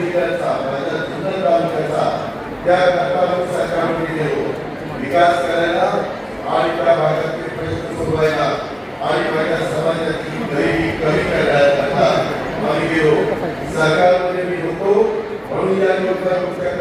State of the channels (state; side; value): identical; both; correlation 1.00